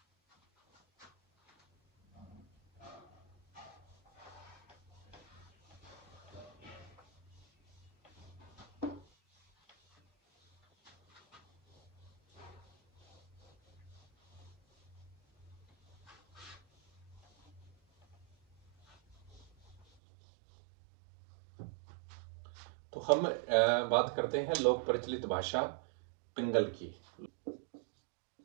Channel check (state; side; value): drops out; left; at 19.9 s